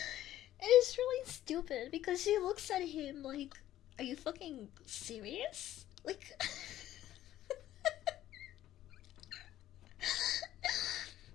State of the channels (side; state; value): right; quieter; 13.2 dB